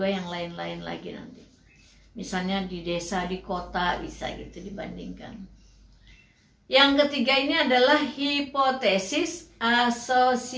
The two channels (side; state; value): both; identical; correlation 1.00